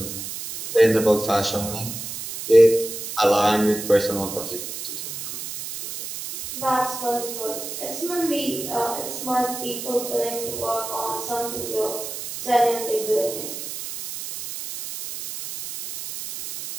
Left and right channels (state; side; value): noise; right; hiss, 8 dB below the sound